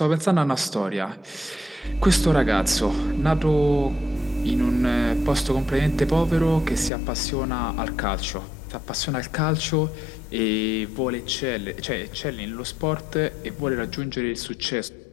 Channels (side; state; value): right; drops out; at 6.9 s